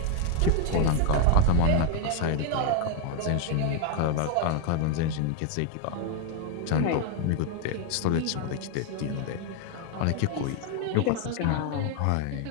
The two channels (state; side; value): different; both; correlation 0.01